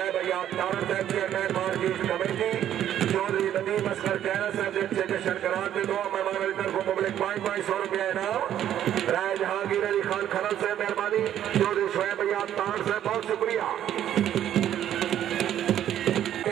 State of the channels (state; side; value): quieter; left; 10.9 dB